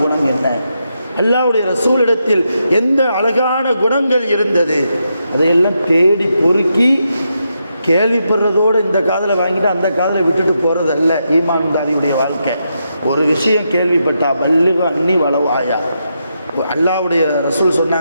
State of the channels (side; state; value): both; inverted; correlation -0.83